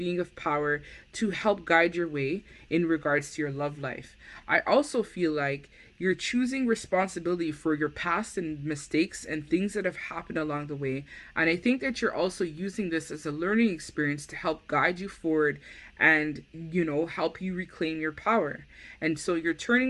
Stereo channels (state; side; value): identical; both; correlation 1.00